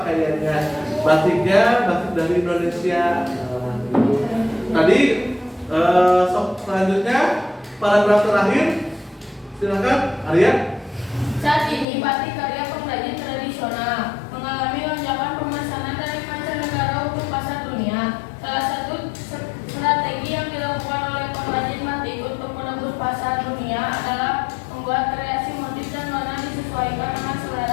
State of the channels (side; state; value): right; drops out; at 11.9 s